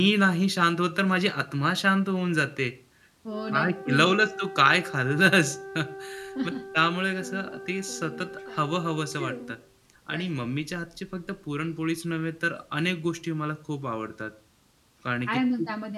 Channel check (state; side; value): identical; both; correlation 1.00